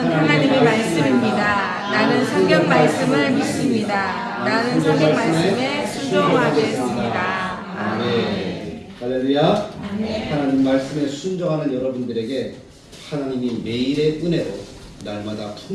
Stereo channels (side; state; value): both; identical; correlation 1.00